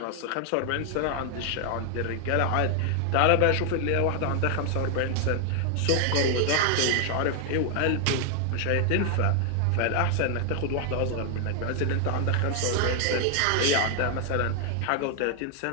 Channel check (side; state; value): both; different; correlation 0.00